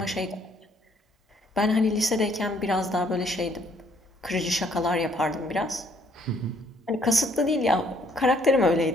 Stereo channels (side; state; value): both; normal; correlation 0.65